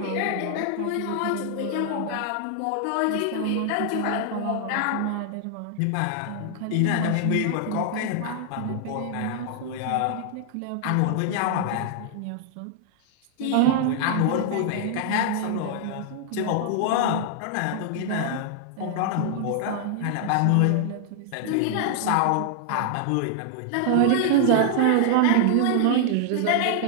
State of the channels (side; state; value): both; different; correlation 0.00